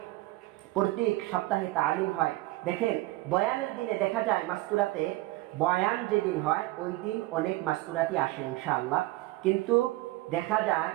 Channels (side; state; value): left; quieter; 18.7 dB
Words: প্রত্যেক সপ্তাহে তালিম হয়। দেখেন, বয়ানের দিনে দেখা যায় মাস্তুরাতে, বয়ান যেদিন হয় ওই দিন অনেক মাস্তুরাতি আসে ইনশাআল্লাহ, কিন্তু দেখা যায়